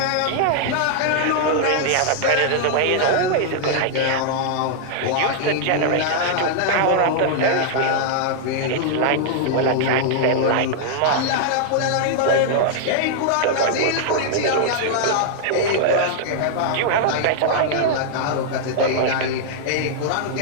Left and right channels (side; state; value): both; different; correlation -0.01